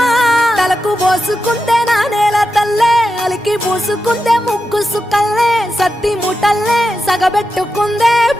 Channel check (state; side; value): normal; both; correlation 0.89